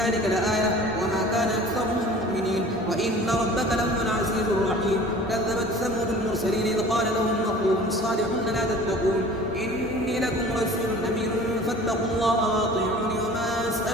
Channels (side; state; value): both; normal; correlation 0.45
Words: لآية وما كان أكثرهم مؤمنين وإن ربك لهو العزيز الرحيم. كذبت ثمود المرسلين إذ قال لهم أخوهم صالح لا تتقون إني لكم رسول أمين فاتقوا الله وأطيعوني وما